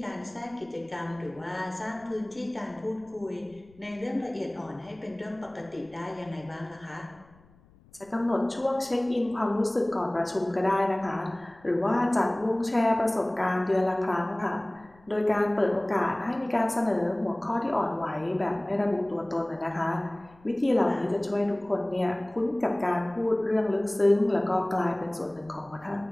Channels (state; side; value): noise; left; rumble, 28 dB below the sound